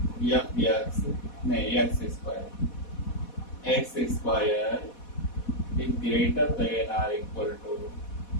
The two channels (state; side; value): late; right; 4.1 ms